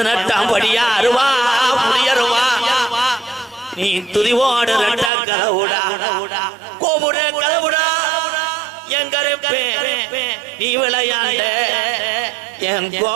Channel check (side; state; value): left; drops out; at 5.1 s